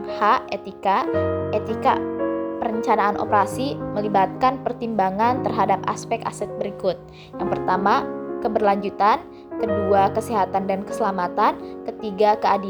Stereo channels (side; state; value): both; identical; correlation 1.00